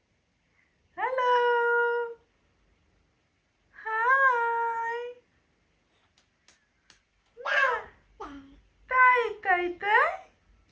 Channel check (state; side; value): identical; both; correlation 1.00